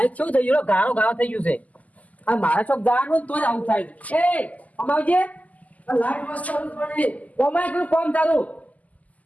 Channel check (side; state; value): right; late; 0.075 ms